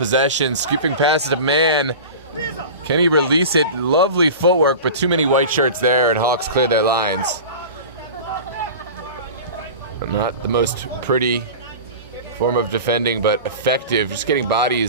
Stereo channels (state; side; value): inverted; both; correlation -0.33